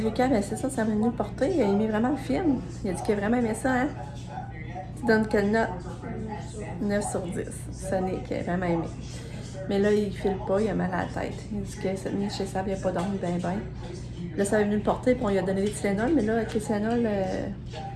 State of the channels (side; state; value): both; identical; correlation 1.00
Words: Lucas, ben c'est ça m'a venu le porter. Il a aimé vraiment le film. Il a dit qu'il a vraiment aimé ça, hein? Tu donnes quelle note? 9 sur 10. Sonic a vraiment aimé. Mais là, il file pas, il a mal à la tête. Il dit que cette nuit chez Sab, il n'a pas dormi ben. Là, ça avait venu le porter, puis on lui a donné des Tylenol, mais là, avec les Tylenol,